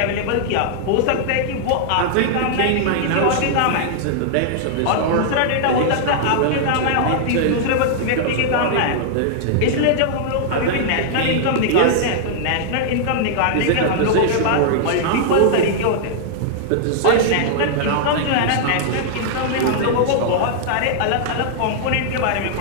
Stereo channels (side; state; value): both; different; correlation -0.01